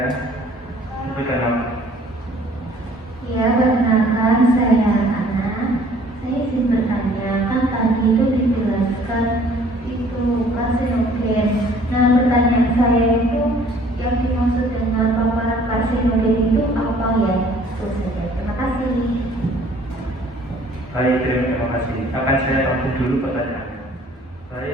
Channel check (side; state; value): both; normal; correlation 0.56